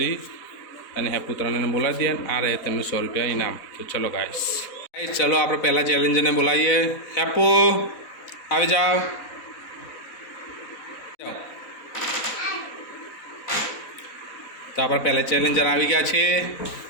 અને હેપુ ત્રણેને બોલાવી દઈએ, આ રહે તેમનું 100 રૂપિયા ઇનામ। તો ચલો ગાઈસ ચલો આપણે પહેલા ચેલેન્જરને બોલાવીએ। હેપુ આવી જાઓ। તો આપણા પહેલા ચેલેન્જર આવી ગયા છે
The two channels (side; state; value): right; late; 4.0 ms